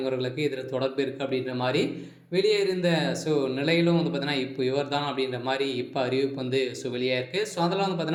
அவர்களுக்கு இதில் தொடர்பு இருக்குது அப்படின்ற மாதிரி வெளியே இருந்த நிலையிலும் பார்த்தீங்கன்னா இப்போ இவர் தான் அப்படின்ற மாதிரி இப்போ அறிவிப்பு வெளியே இருக்குது. அதெல்லாம்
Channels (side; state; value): both; identical; correlation 1.00